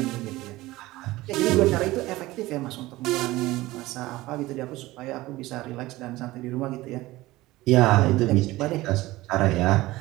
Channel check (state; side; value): quieter; left; 18.5 dB